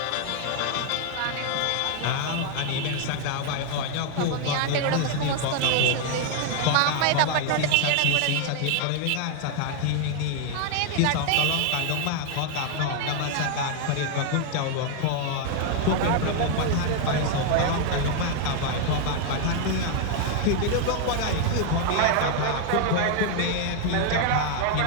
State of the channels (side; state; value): both; different; correlation 0.00